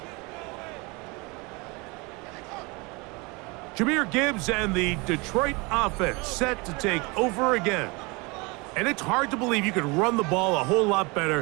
Jahmyr Gibbs and the Detroit offense set to take over again. And it's hard to believe you could run the ball a whole lot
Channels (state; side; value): quieter; left; 27.0 dB